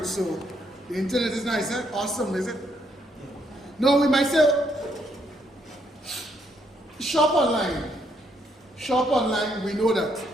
So the internet is nice, eh? Awesome, is it? No, we might say shop online. Shop online, we know that.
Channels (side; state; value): both; normal; correlation 0.73